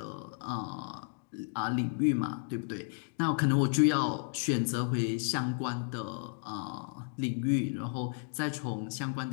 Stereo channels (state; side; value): silent; right; digital silence